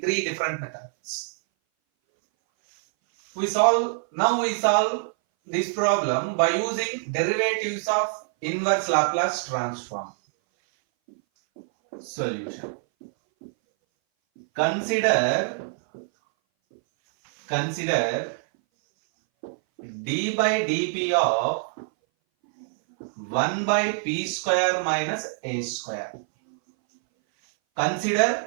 different methods. We solve this problem by using derivatives of inverse Laplace transform. Solution. Consider d by dp of 1 by p square minus a square.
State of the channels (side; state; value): left; silent; 59 dB below the other